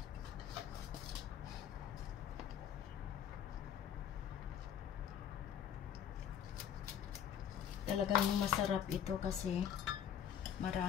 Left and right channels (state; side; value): quieter; right; 9.2 dB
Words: Talagang masarap ito kasi